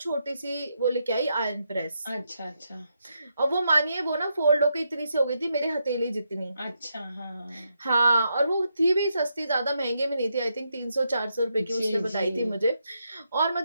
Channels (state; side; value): inverted; both; correlation -0.81